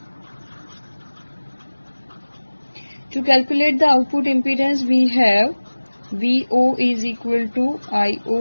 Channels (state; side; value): inverted; both; correlation -1.00